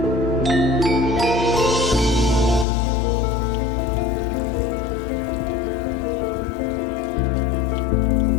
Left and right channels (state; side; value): drops out; right; at 2.7 s